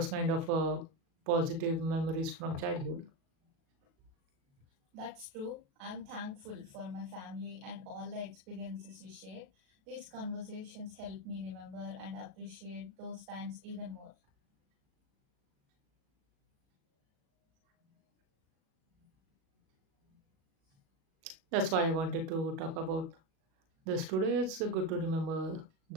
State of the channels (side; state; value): left; late; 37 ms